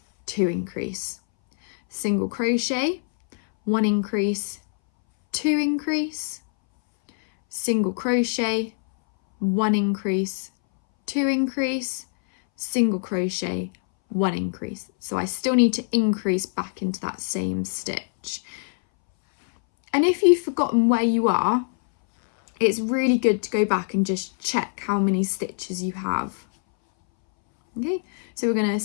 2 increase. Single crochet, 1 increase, 2 increase. Single crochet, 1 increase, 2 increase, single crochet, 1 increase. So I still need to increase back into that same stitch. And if you've forgotten where you are, it's really good to go back and just check how many stitches you have. Okay, so we're going to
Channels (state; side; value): silent; right; 61 dB below the other